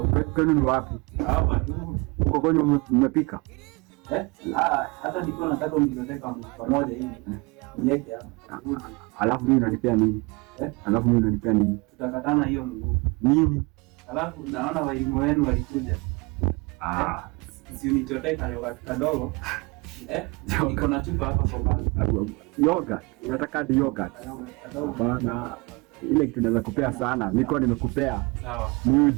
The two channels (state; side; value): quieter; left; 27.1 dB